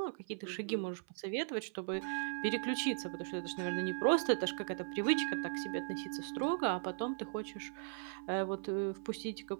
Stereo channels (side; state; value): left; silent; 52 dB below the other